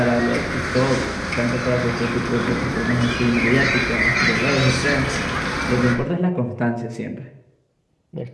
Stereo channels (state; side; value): identical; both; correlation 1.00